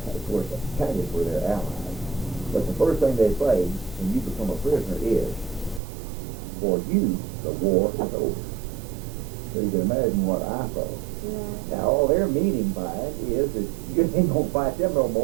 course the Italians were their allies. But the first thing they say when you become a prisoner is, for you, the war is over. So you can imagine what I thought. Yeah. Now all their meaning by it is that you ain't gonna fight them no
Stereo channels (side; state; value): left; drops out; at 5.8 s